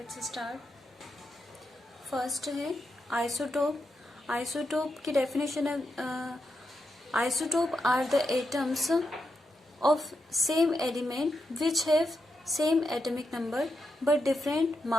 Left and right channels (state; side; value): normal; both; correlation 0.85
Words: स्टार्ट। फर्स्ट है आइसोटोप। आइसोटोप की डेफिनेशन है, isotope are the atoms of same element which have same atomic number but different